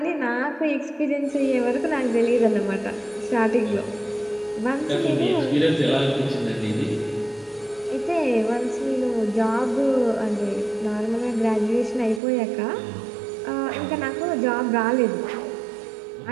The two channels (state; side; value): drops out; left; at 12.2 s